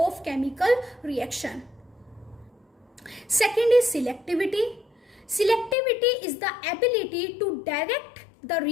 chemical reaction. Second is selectivity. Selectivity is the ability to direct the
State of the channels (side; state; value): right; drops out; at 5.8 s